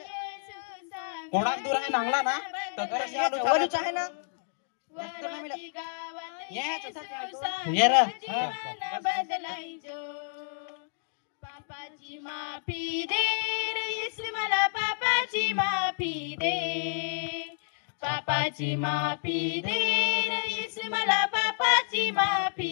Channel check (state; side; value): silent; right; digital silence